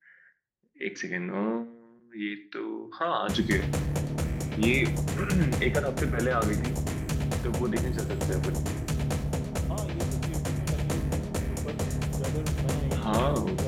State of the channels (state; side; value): identical; both; correlation 1.00